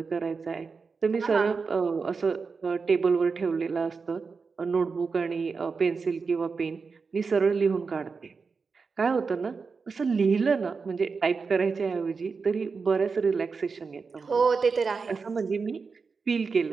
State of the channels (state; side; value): quieter; left; 4.9 dB